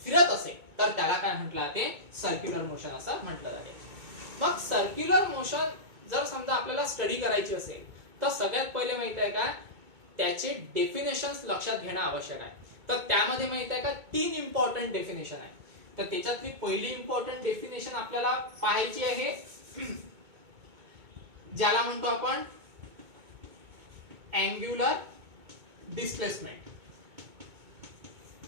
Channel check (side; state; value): left; late; 2.2 ms